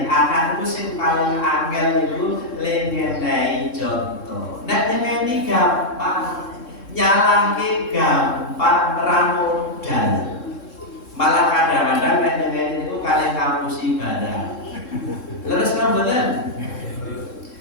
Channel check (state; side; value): late; right; 3.7 ms